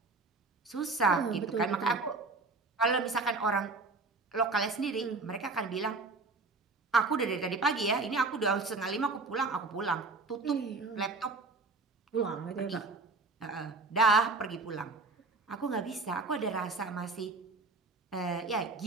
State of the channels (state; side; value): quieter; left; 3.7 dB